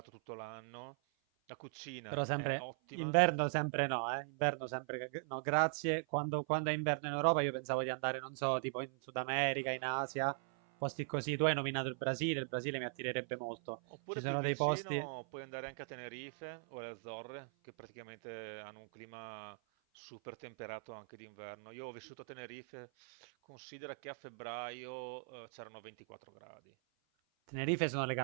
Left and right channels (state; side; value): silent; left; 51 dB below the other